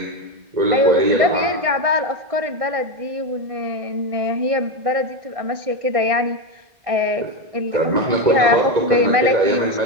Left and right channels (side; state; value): left; late; 1.6 ms